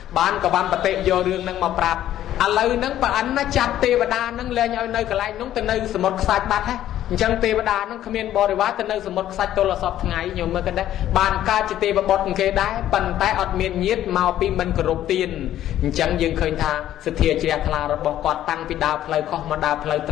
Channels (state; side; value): quieter; right; 12.3 dB